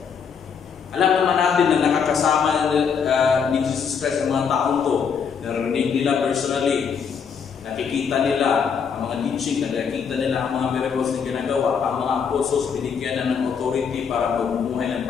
Alam naman natin na nakakasama ni Jesus Christ ang mga taong to. Narinig nila personally, nakikita nila ang mga teaching, nakikita nila ang mga miracles na ginagawa, ang mga apostles binigyan na ng authority para magbubuhay ng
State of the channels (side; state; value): right; quieter; 6.6 dB